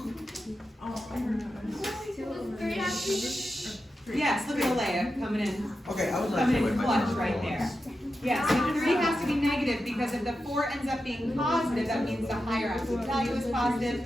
Three has to be Yes, look at Alea coming in. Okay, I would like Coming to in wait my clutch turn right for there. once. Yeah, so 3 has to be negative because if the 4 ends up being positive, that means the higher absolute value is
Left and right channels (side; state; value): both; normal; correlation 0.90